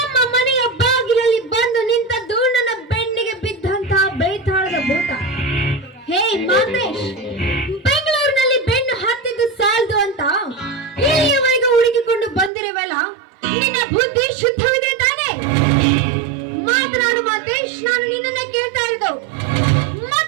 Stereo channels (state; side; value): drops out; left; at 12.5 s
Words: ಮನೆಯ ಬಾಗಿಲಲ್ಲಿ ಬಂದು ನಿಂತದ್ದು ನನ್ನ ಬೆನ್ನಿಗೆ ಬಿದ್ದಂತಹ ಬೇತಾಳದ ಭೂತ. ಹೇ ಮಾತೇಶ್, ಬೆಂಗಳೂರಿನಲ್ಲಿ ಬೆನ್ನು ಹತ್ತಿದ್ದು ಸಾಲದು ಅಂತ ಇಲ್ಲಿಯವರೆಗೆ ಹುಡುಕಿಕೊಂಡು ಬಂದಿರುವಲ್ಲ, ನಿನ್ನ ಬುದ್ಧಿ ಶುದ್ಧವಿದೆ ತಾನೆ? ಮಾತನಾಡು ಮಾತೇಶ್, ನಾನು ನಿನ್ನನ್ನೇ ಕೇಳ್ತಾ ಇರೋದು.